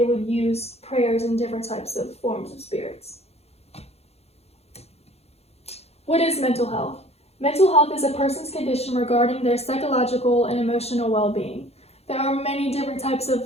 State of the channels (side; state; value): right; late; 0.30 ms